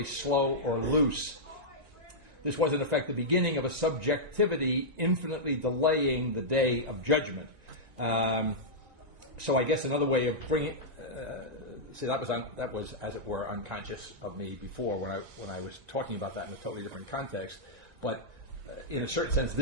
slow or loose. This was, in effect, the beginning of a subjectivity infinitely delaying the day of judgment. So I guess another way of bringing... see, that was, as it were, unconscious of me before when I was talking about that in a totally different context. But in a certain sense,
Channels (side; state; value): left; late; 1.9 ms